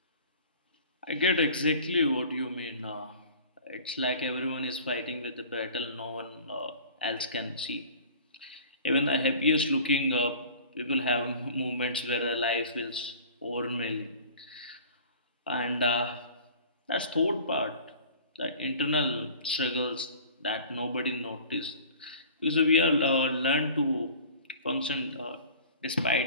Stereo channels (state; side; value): inverted; both; correlation -0.45